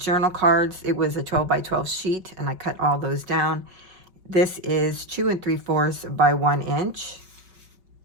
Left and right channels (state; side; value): late; left; 5.3 ms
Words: cards. It was a 12 by 12 sheet, and I cut all those down. This is 2 3/4 by 1 inch.